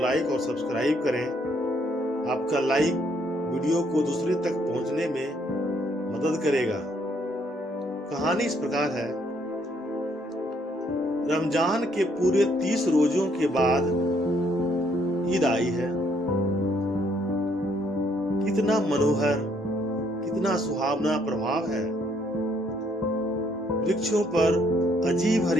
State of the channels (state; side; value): normal; both; correlation 0.69